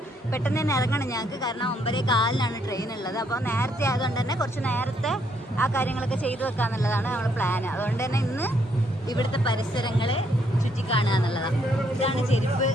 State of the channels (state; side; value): normal; both; correlation 0.71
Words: പെട്ടെന്ന് തന്നെ ഇറങ്ങണം ഞങ്ങൾക്ക്. കാരണം 9:15 ട്രെയിൻ ഉള്ളത്. അപ്പോൾ നേരത്തെ ആയതുകൊണ്ട് തന്നെ കുറച്ച് നേരത്തെ ആ കാര്യങ്ങളൊക്കെ ചെയ്തു വെക്കാന്നുള്ളതാണ് നമ്മുടെ പ്ലാന്. അതുകൊണ്ട് തന്നെ ഇന്ന് ഇവിടുത്തെ പരിസരങ്ങളെ ചുറ്റിക്കാണുക എന്നുള്ളതാണ്. ഇതാണ് ചെരുപ്പ്